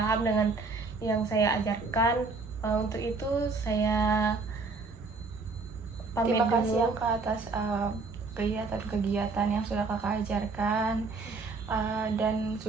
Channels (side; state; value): left; quieter; 4.0 dB